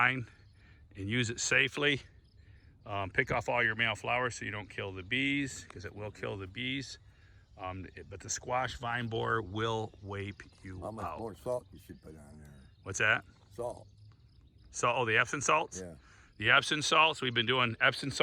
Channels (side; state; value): both; identical; correlation 1.00